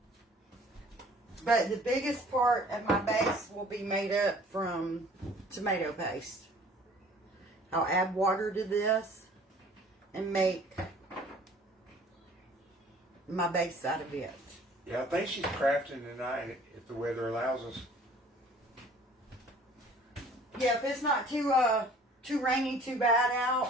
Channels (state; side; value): normal; both; correlation 0.52